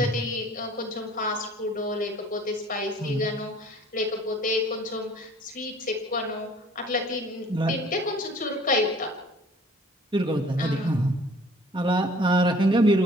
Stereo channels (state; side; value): normal; both; correlation 0.52